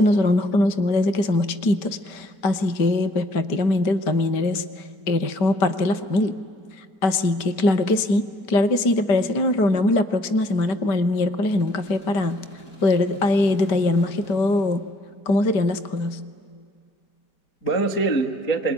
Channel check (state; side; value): late; right; 5.1 ms